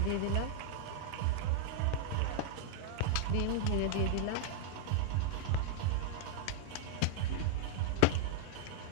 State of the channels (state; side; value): different; both; correlation -0.01